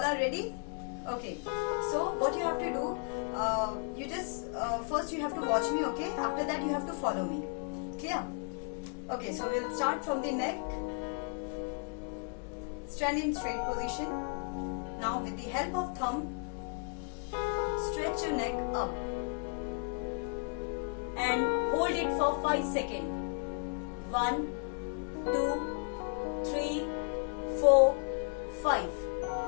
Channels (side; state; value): right; quieter; 39.2 dB